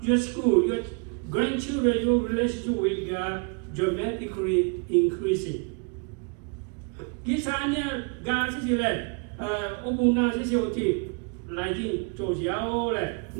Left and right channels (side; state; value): left; quieter; 36.7 dB